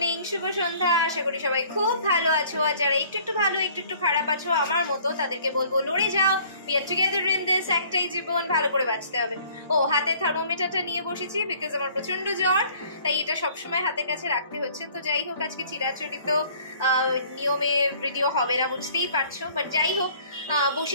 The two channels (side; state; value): both; inverted; correlation -0.55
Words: শুভ সন্ধ্যা। আশা করি সবাই খুব ভালো আছো। আর যারা একটু ভালো একটু খারাপ আছো আমার মতো, তাদেরকে বলবো লড়ে যাও। We are together in this. একটাই জীবন, ভালো করে বাঁচতে হবে। ও হাতে থার্মোমিটারটা নিয়ে বসেছি বিকজ আমার প্রচন্ড জ্বর, তাই এটা সবসময় হাতের কাছে রাখতে হচ্ছে। তো যাই হোক, আজকে চিরাচরিত নিয়মে ভিডিও হবে না, বুঝতেই পারছো। বাট যাই হোক,